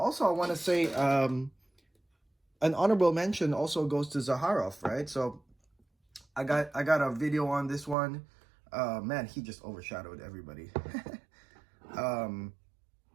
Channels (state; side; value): drops out; left; at 8.0 s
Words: I want to say an honorable mention also goes to Zaharoff, right? So I got a video on this one. Man, he just overshadowed everybody.